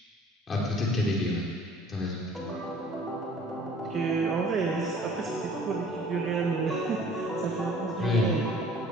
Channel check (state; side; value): normal; both; correlation 0.52